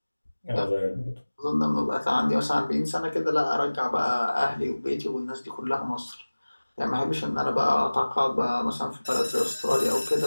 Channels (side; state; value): both; inverted; correlation -1.00